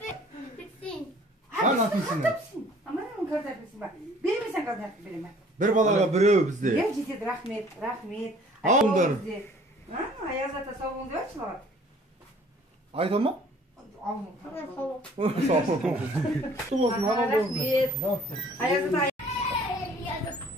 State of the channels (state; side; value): normal; both; correlation 0.54